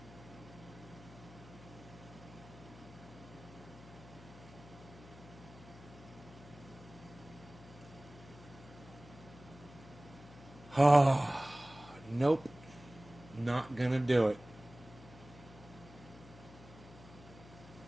Oh, nope. Not gonna do it.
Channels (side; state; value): left; noise; hum, 18 dB below the sound